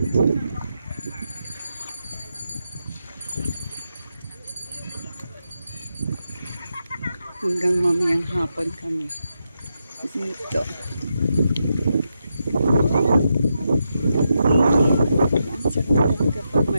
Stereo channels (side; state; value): both; inverted; correlation -0.85